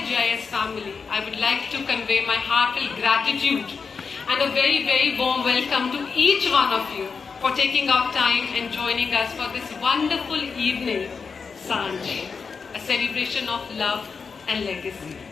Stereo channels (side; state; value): right; quieter; 5.3 dB